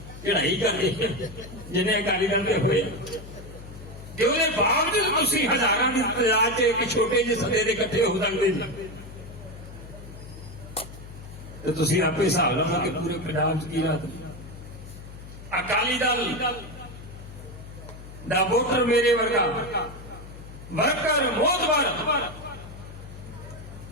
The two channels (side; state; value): left; noise; hum, 14 dB below the sound